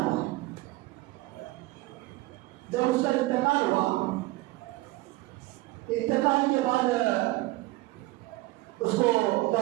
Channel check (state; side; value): quieter; left; 19.6 dB